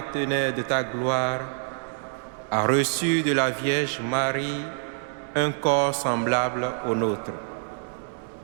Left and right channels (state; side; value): silent; left; digital silence